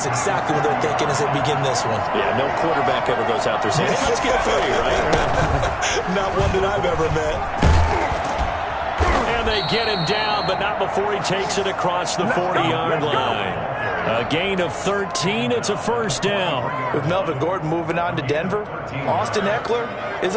exactly what they're thinking as they begin this one. Yeah, no quarterback ever goes out there saying, hey, let's get 3, right? Not one that I've ever met. And they get him down, but not before he takes it across the 40-yard line. A gain of 13. It's a first down. With Melvin Gordon moving on to Denver, Austin Eckler is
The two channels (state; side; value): identical; both; correlation 1.00